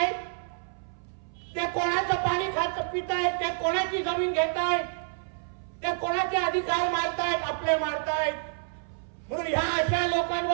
ते कोणाचं पाणी खात पित आहेत, ते कोणाची जमीन घेत आहेत, ते कोणाचे अधिकार मारतायत, आपले मारतायत. म्हणून ह्या अशा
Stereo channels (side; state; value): left; silent; 59 dB below the other